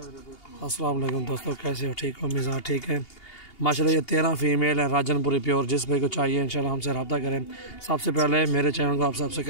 वालेकुम दोस्तों, कैसे हो? ठीक हो? मिजाज ठीक है माशाल्लाह। ये 13 फीमेल है राजनपुरी प्योर। जिस भाई को चाहिए इंशाल्लाह हमसे रब्ता करें। सबसे पहले मेरे चैनल को आप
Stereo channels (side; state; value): right; late; 2.8 ms